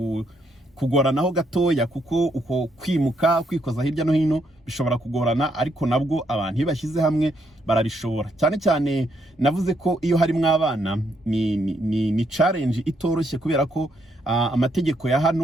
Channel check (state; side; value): normal; both; correlation 0.75